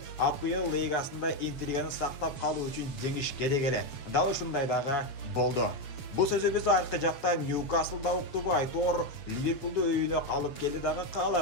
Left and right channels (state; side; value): late; right; 7.2 ms